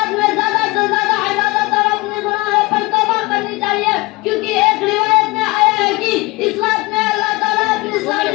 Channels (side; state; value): right; quieter; 22.2 dB